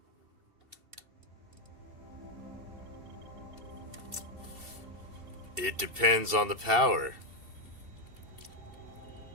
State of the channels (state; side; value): late; left; 2.7 ms